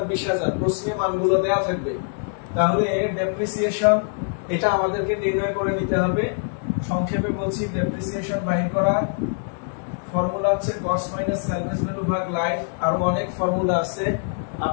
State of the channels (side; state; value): right; silent; 59 dB below the other